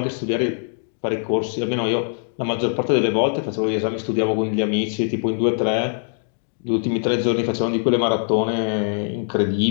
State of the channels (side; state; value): right; silent; digital silence